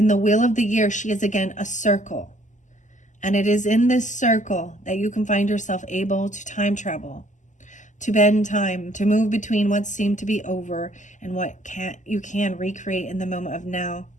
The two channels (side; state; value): right; late; 0.36 ms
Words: the wheel of the year, she is again a circle. And it is in this circle that you can find yourself able to time travel, to bend time, to move between what seemed to be over and what you can recreate in the moment of now.